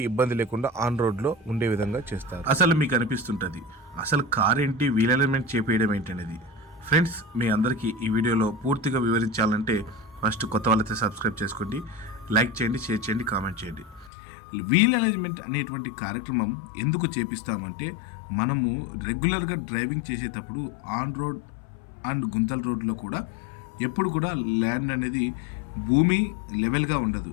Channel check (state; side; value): drops out; right; at 14.1 s